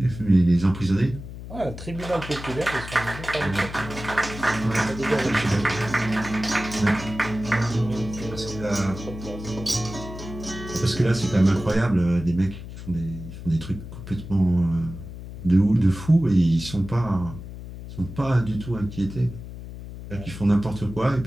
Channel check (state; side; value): noise; left; hum, 11 dB below the sound